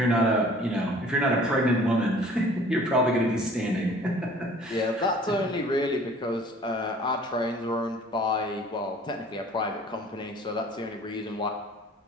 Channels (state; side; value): normal; both; correlation 0.50